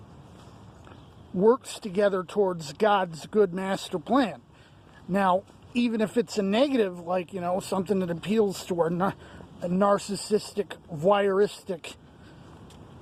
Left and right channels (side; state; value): both; identical; correlation 1.00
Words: works together towards God's good master plan. Now, even if it's a negative, like, you know, something that appeals to our narcissistic, voyeuristic,